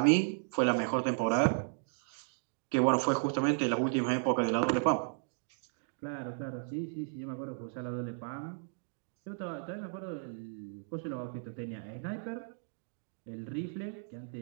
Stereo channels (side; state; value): left; silent; digital silence